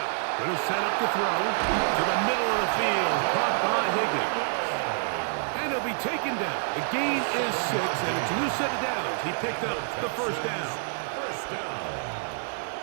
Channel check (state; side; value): silent; left; digital silence